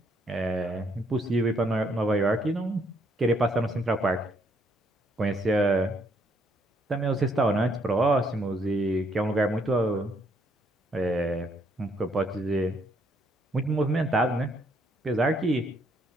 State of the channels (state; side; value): normal; both; correlation 0.70